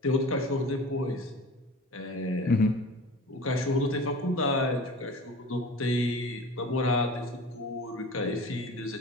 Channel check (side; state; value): both; normal; correlation 0.38